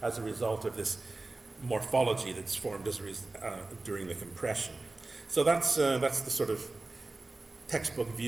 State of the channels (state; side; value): quieter; left; 3.2 dB